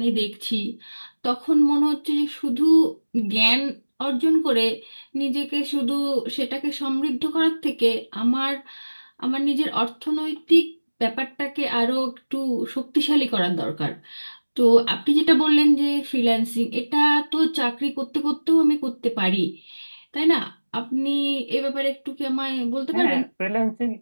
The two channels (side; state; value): both; inverted; correlation -1.00